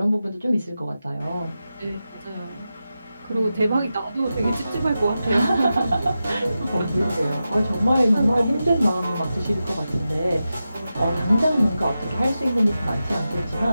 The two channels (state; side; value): inverted; both; correlation -0.91